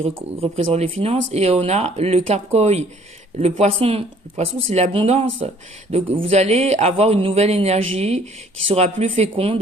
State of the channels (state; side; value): normal; both; correlation 0.58